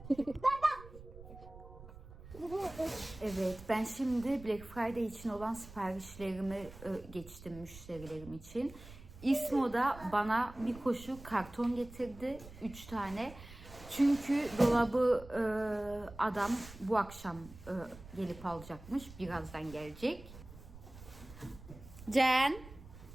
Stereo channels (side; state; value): right; noise; rumble, 17 dB below the sound